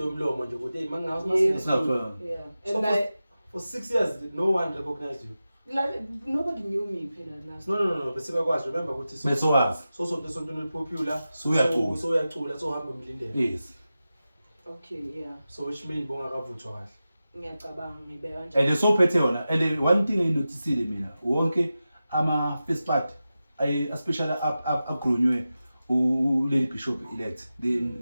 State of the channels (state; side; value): inverted; both; correlation -0.93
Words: umlomo nje ukuthi hey mangazi Yeah. masine. Yeah. So And for 6 years no one recognized you. like nobody knew me phela Nastro. No, bese bakwazi remember ukuthi Besowazi. so sontweni popular So uyacula. so uyacula so uhamba umlindele. Yes. Okay, yeah. So which mean bongakavuthwa kahle. Ngiyacabanga ngibeka kanjalo. And so phethe yona and one thing enginotisile mina wonke ama first part especially upgrownywe Lady Bishop elect